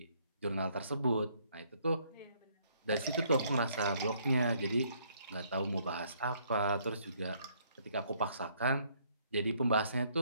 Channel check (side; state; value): both; inverted; correlation -0.67